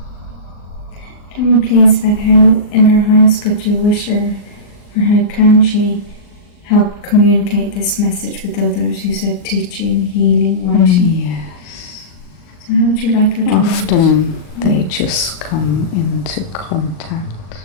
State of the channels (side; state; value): right; late; 38 ms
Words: Tell me please about how in her highest good you wish her, or how can she help communicate this message with others? You said teaching, healing, writing. Yes. So how would you like her to Often they just come into contact